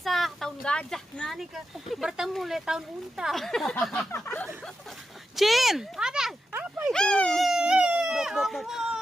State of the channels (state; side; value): normal; both; correlation 0.88